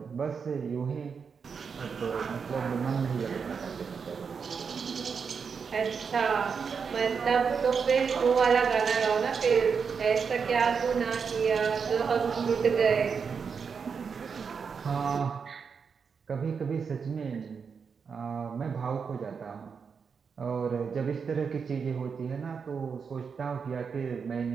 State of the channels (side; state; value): left; quieter; 6.0 dB